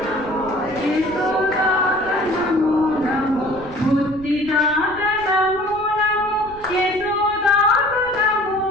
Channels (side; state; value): right; noise; rumble, 19 dB below the sound